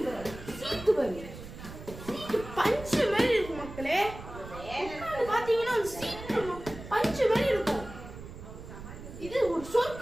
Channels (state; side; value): noise; right; rumble, 13 dB below the sound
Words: சீட்டு பாருங்க, சீட்டு பஞ்சு மாதிரி இருக்கும் மக்களே. பாத்தீங்கன்னா சீட்டு பஞ்சு மாதிரி இருக்கும். இது ஒரு